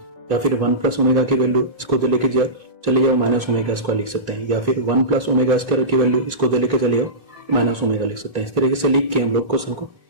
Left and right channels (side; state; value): left; late; 1.5 ms